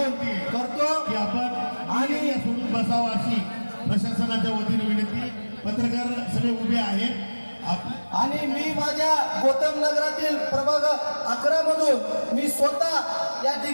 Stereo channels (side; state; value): both; inverted; correlation -1.00